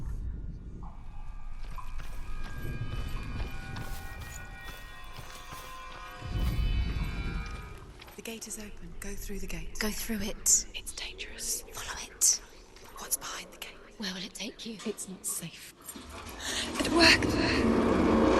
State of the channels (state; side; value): identical; both; correlation 1.00